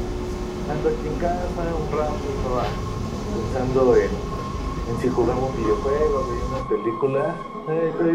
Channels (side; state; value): both; identical; correlation 1.00